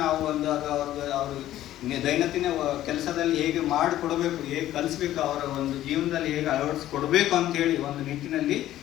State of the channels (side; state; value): right; quieter; 13.5 dB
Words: ನಾವು ಒಂದು ಅವರು ದೈನಂದಿನ ಕೆಲಸದಲ್ಲಿ ಹೇಗೆ ಮಾಡಿಕೊಡಬೇಕು, ಹೇಗೆ ಕಲಿಸ್ಬೇಕು, ಅವರ ಒಂದು ಜೀವನದಲ್ಲಿ ಹೇಗೆ ಅಳವಡಿಸ್ಕೊಡ್ಬೇಕು ಅಂತೇಳಿ ಒಂದು ನಿಟ್ಟಿನಲ್ಲಿ